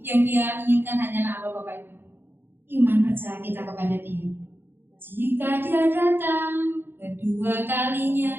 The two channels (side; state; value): left; late; 0.10 ms